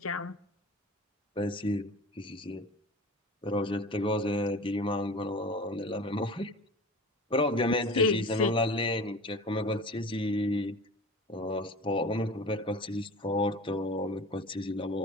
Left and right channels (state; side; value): normal; both; correlation 0.37